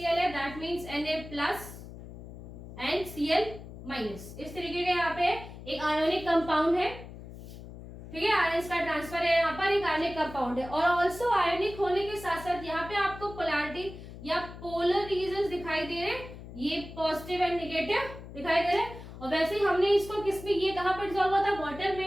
है, that means Na+ and Cl-। इस तरीके के यहाँ पे एक आयोनिक कंपाउंड है, ठीक है, आयंस का ट्रांसफर है, यहाँ पर एक आयनिक कंपाउंड है। और ऑल्सो आयनिक होने के साथ साथ यहाँ पे आपको पोलैरिटी या पोलर रीजन दिखाई दे रहे हैं, ये पॉजिटिव एंड नेगेटिव दिखाई दे रहे हैं। और वैसे ही हमने इसको किसमें, ये कहाँ पर डिसॉल्व हुआ था? वाटर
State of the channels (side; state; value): left; noise; hum, 14 dB below the sound